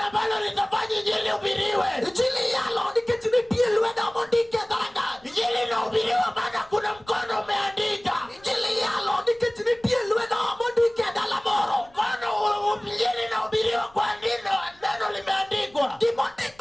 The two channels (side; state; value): left; noise; rumble, 28 dB below the sound